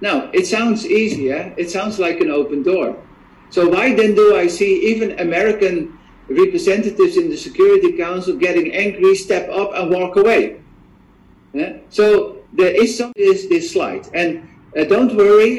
Now, it sounds easy, eh? It sounds like an open door. So why then do I see even American representatives in the Security Council getting angry, step up and walk away? Yeah? So there is this slide. And don't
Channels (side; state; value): both; identical; correlation 1.00